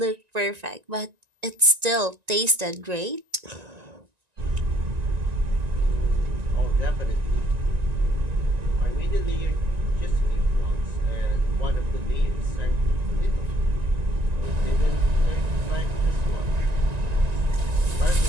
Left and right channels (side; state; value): left; late; 1.9 ms